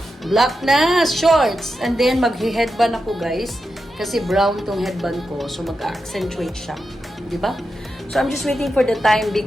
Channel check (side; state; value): both; normal; correlation 0.89